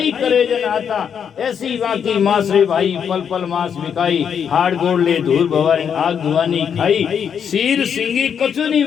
करे जन आता, ऐसी बाकी मास रे भाई पल पल मास बिकाई, हाड़ गोड़ ले धूल भवानी आग धुआनी खाई, सीर सिंगी कचुनी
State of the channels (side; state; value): right; quieter; 7.6 dB